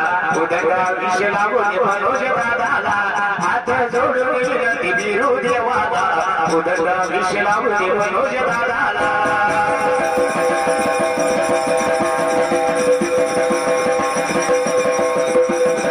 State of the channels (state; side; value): identical; both; correlation 1.00